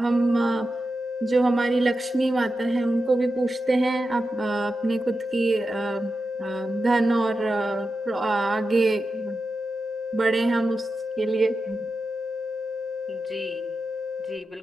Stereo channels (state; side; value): normal; both; correlation 0.90